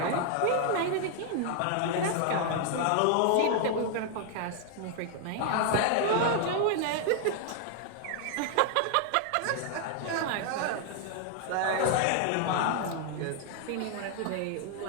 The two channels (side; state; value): both; different; correlation 0.00